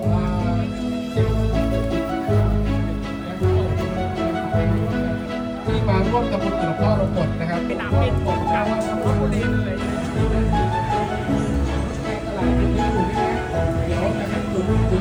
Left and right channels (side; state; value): both; identical; correlation 1.00